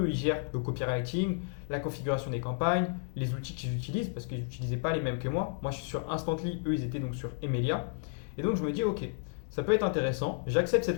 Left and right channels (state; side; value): silent; right; 56 dB below the other